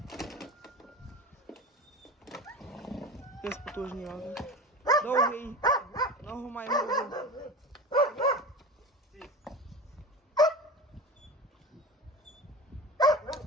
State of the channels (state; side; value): normal; both; correlation 0.30